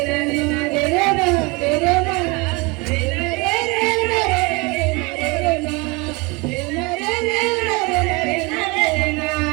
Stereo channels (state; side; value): quieter; left; 26.9 dB